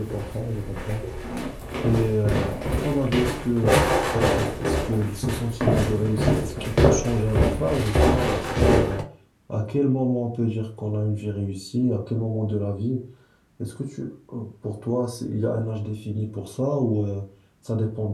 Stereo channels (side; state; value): both; identical; correlation 1.00